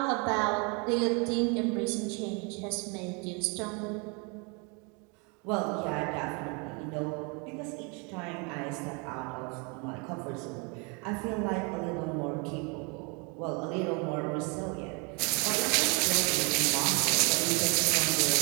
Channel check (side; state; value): left; quieter; 32.6 dB